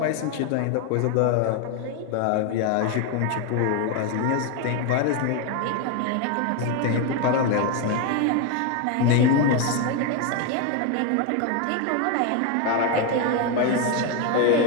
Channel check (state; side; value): different; both; correlation 0.01